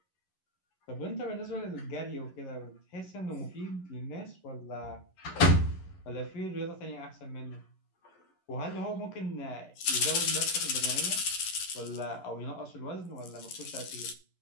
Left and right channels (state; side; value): late; right; 11 ms